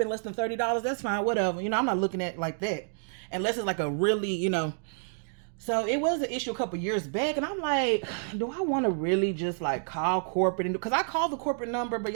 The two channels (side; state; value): left; silent; digital silence